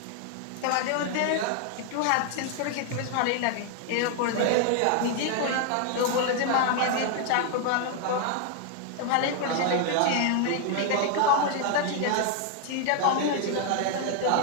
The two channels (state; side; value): different; both; correlation 0.00